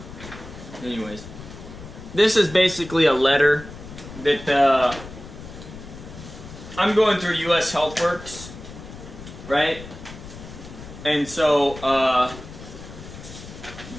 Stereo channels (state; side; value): noise; left; rumble, 14 dB below the sound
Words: Anyways. This is basically a letter that I'm going through US HealthWorks, right? And so